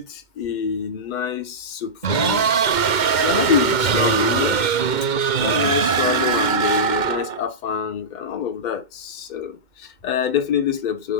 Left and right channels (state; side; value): late; right; 2.1 ms